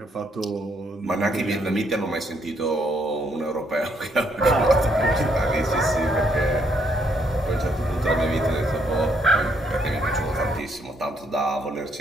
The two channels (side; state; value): both; normal; correlation 0.72